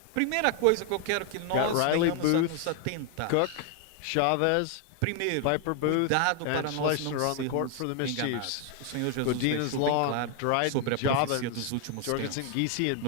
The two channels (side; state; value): both; different; correlation 0.01